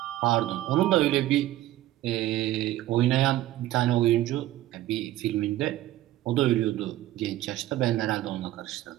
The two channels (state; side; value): quieter; left; 14.8 dB